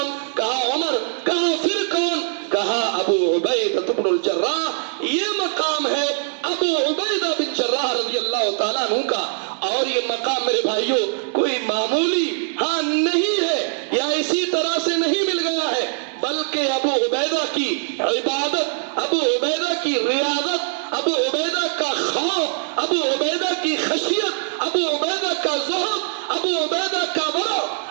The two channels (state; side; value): silent; left; 64 dB below the other